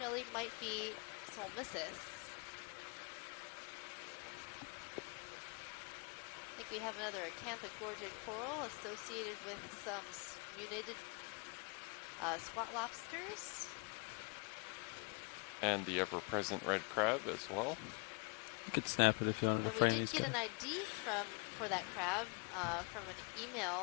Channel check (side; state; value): right; quieter; 34.3 dB